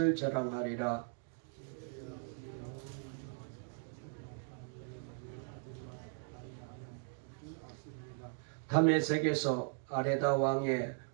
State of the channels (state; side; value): silent; left; 52 dB below the other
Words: 자랑하리라. 다메섹에서 아레다 왕의